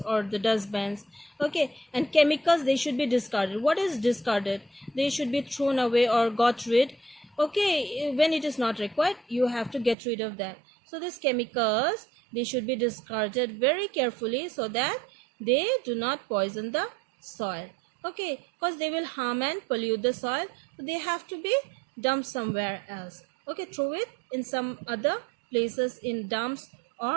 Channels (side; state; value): left; drops out; at 10.0 s